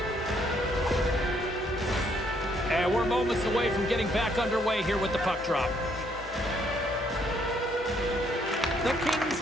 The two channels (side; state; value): both; normal; correlation 0.69